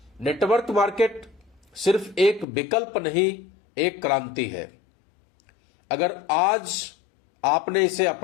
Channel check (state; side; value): drops out; right; at 2.5 s